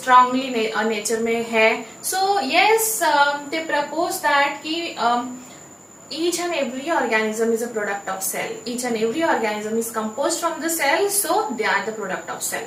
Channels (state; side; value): identical; both; correlation 1.00